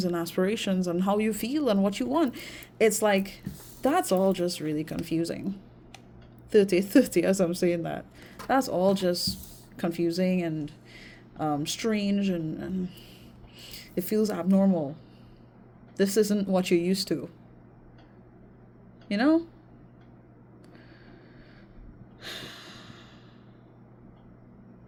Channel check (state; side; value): identical; both; correlation 1.00